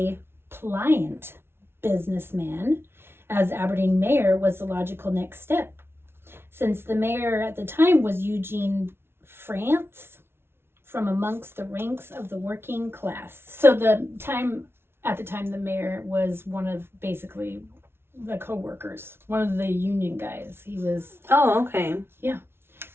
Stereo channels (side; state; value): left; late; 0.12 ms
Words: pliant businessman as Aberdeen mayor was the logical next step. Since the mayor at the time was Eugene France, from amongst the ranks of the working class. So at the time the mayor was one of basically the co-workers, one of the union guys. He was... Oh, okay. Yeah.